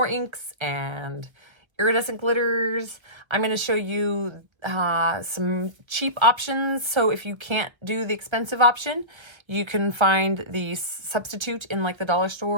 inks and iridescent glitters. I'm going to show you some cheap options. So if you can't do the expensive option, you can find the substitute in like the dollar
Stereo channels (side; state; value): left; late; 1.1 ms